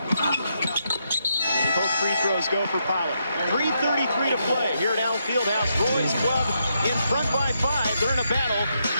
both free throws go for Pollard. 3:33 to play here at Allen Fieldhouse. Roy's club in front by 5. They're in a battle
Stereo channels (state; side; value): inverted; both; correlation -0.80